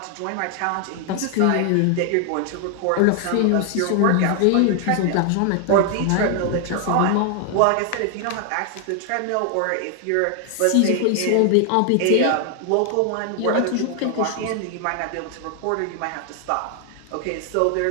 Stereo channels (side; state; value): both; different; correlation 0.00